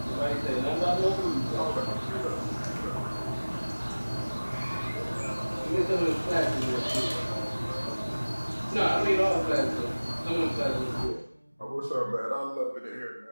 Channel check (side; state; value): both; inverted; correlation -1.00